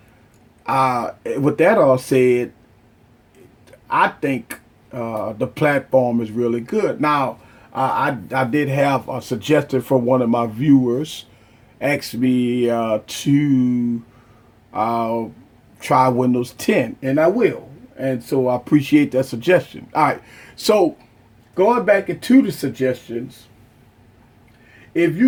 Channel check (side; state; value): both; identical; correlation 1.00